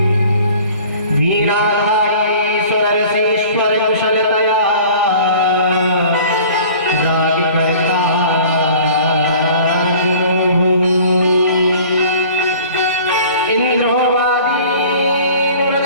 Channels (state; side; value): inverted; both; correlation -0.46